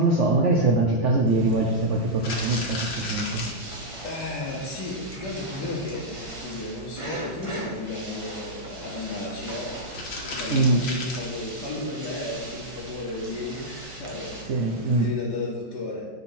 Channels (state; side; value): normal; both; correlation -0.06